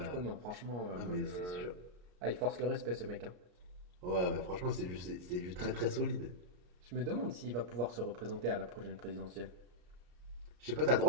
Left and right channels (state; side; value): late; left; 34 ms